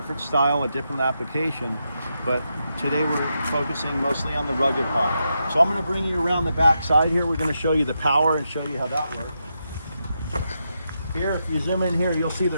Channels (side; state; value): both; inverted; correlation -0.84